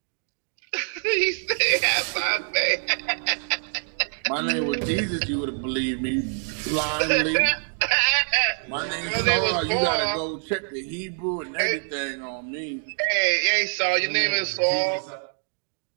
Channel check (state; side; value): silent; left; 62 dB below the other